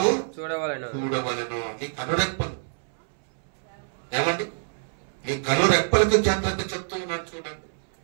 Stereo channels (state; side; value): silent; left; 61 dB below the other